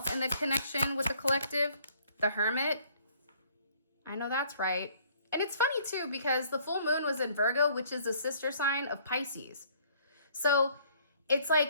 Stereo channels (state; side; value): inverted; both; correlation -0.60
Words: in the connection with the collective? The Hermit. I know that's right. And it's funny, too, because the full moon was in Virgo, which is the sister sign of Pisces. So it's